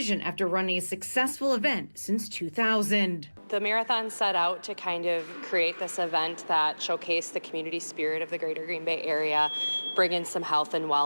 after running a successful event since 2000. The marathon set out to kind of create this event that showcased the community spirit of the greater Green Bay area, bring in some health and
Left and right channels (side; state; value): both; inverted; correlation -1.00